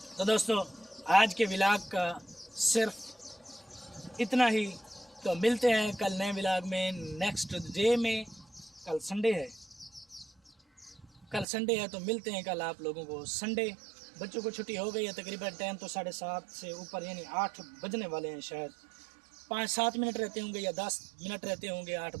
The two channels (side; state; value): left; drops out; at 11.5 s